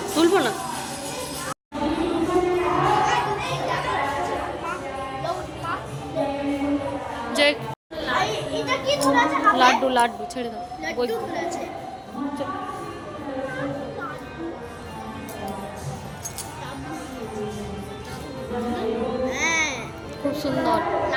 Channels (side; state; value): both; identical; correlation 1.00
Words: তুলবো না, যে লাড্ডু লাড্ডু ছেড়ে দাও। খুব সুন্দর